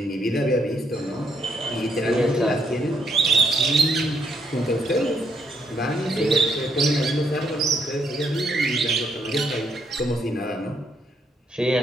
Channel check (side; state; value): both; normal; correlation 0.74